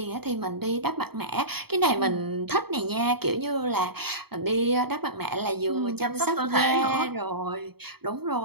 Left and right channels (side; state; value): left; late; 0.96 ms